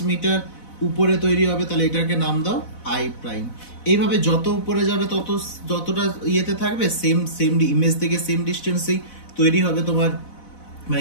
মিটার উপরে তৈরি হবে, তাহলে এটাকে নাম দাও আই প্রাইম। এইভাবে যত উপরে যাবে যতটা ইয়েতে থাকবে সেম ইমেজ থেকে সেম ডিস্টেন্সেই তৈরি হবে তোমার, মানে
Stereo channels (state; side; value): late; right; 4.0 ms